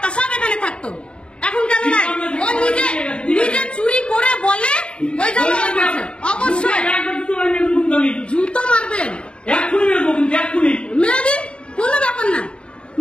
সব এখানে থাকতো, এখন কেন নাই? ও নিজে চুরি করে বলে ওই জন্য অবশ্যই জুতো মারবেন, মেরে দিন, কোনো ব্যাপার না,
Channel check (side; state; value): right; late; 0.055 ms